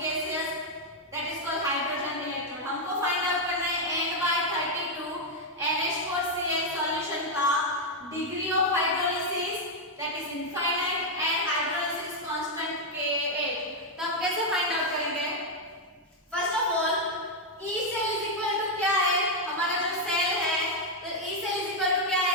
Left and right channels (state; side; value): normal; both; correlation 0.01